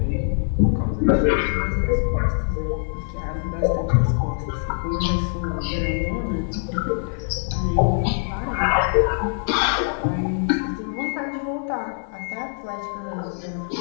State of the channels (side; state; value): right; silent; digital silence